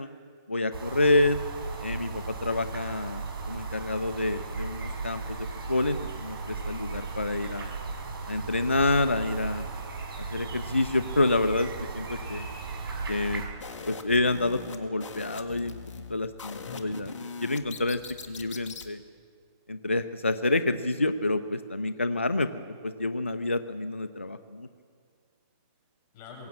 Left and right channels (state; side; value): inverted; both; correlation -0.76